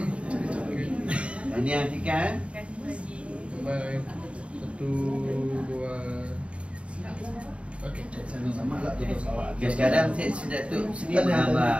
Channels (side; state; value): left; late; 0.061 ms